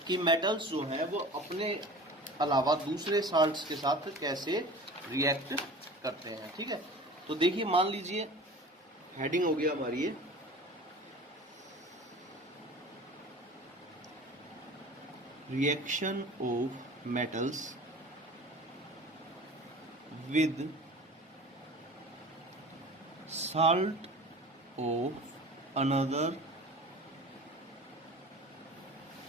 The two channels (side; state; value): both; normal; correlation 0.39